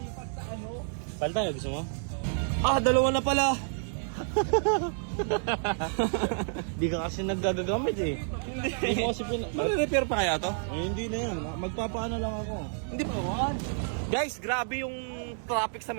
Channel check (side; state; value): left; silent; digital silence